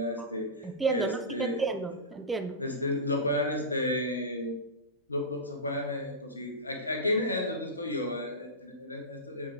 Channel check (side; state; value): both; normal; correlation -0.16